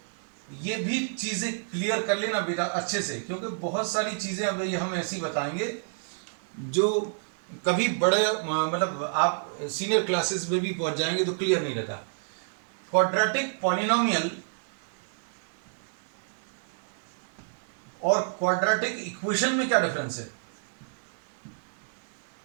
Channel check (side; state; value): left; silent; digital silence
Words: ये भी चीजें क्लियर कर लेना बेटा अच्छे से, क्योंकि बहुत सारी चीजें अब ये हम ऐसी बताएंगे जो कभी बड़े मतलब आप सीनियर क्लासेस में भी पहुंच जाएंगे तो क्लियर नहीं रहता. क्वाड्रेटिक पॉलिनोमियल और क्वाड्रेटिक इक्वेशन में क्या डिफरेंस है.